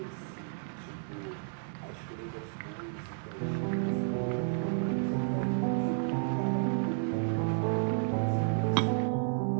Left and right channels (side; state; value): left; silent; digital silence